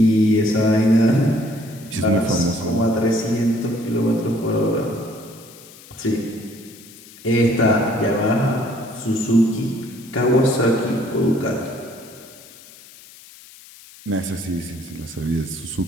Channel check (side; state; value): left; noise; hiss, 21 dB below the sound